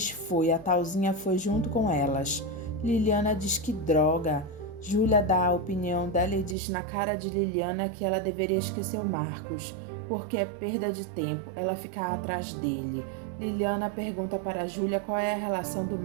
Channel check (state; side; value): drops out; left; at 6.6 s